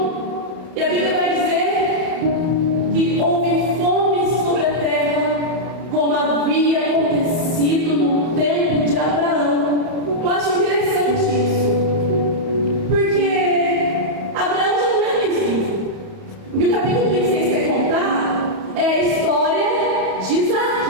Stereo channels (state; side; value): late; left; 31 ms